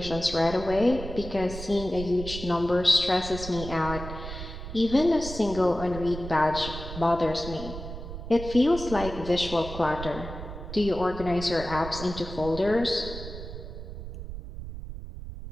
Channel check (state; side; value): noise; right; rumble, 10 dB below the sound